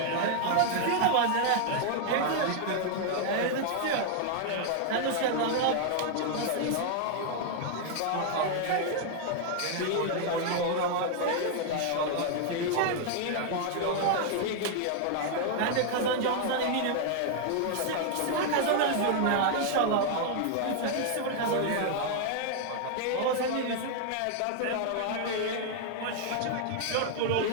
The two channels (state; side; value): different; both; correlation 0.00